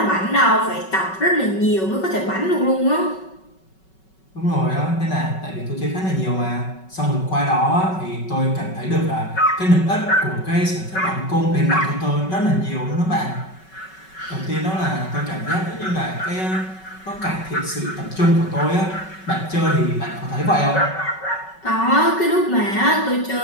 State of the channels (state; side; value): late; right; 5.3 ms